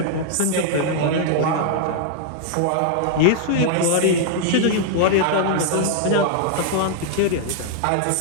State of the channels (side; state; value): both; different; correlation -0.01